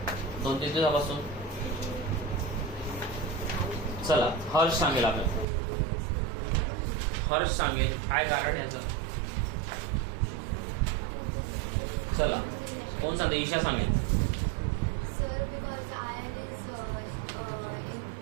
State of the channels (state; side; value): drops out; left; at 5.5 s